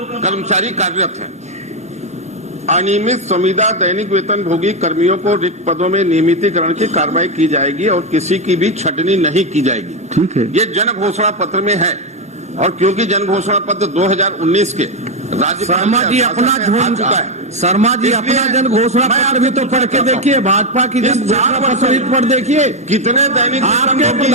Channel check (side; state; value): both; normal; correlation 0.07